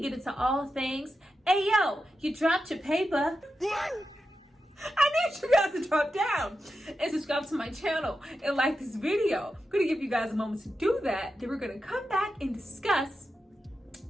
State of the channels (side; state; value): both; normal; correlation 0.89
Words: get into all things, hey yo, you dropped your paper. I need you guys to drop down and subscribe to my channel and like this video. I'm gonna give you guys a moment to do that. Then we're gonna come back and discuss.